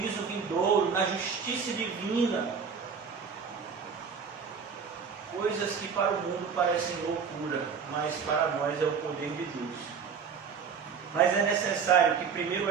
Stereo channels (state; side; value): quieter; left; 6.2 dB